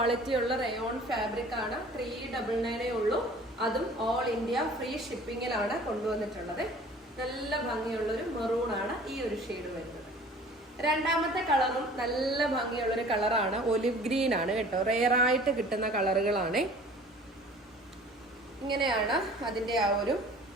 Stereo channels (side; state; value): both; normal; correlation 0.48